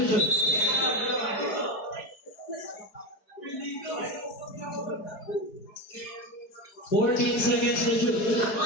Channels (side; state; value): right; late; 4.6 ms